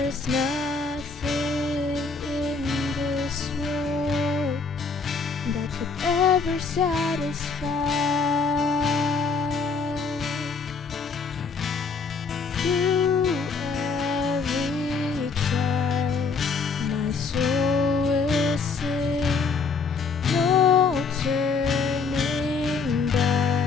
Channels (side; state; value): right; quieter; 4.8 dB